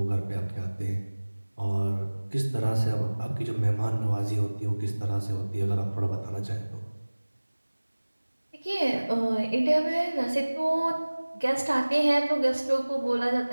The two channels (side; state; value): both; inverted; correlation -1.00